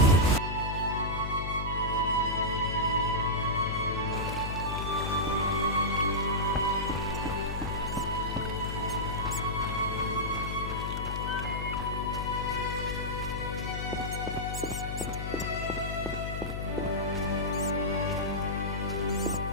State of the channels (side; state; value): left; noise; hum, 4 dB below the sound